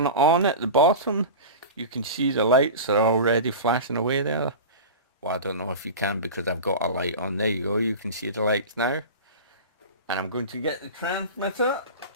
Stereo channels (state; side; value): inverted; both; correlation -0.30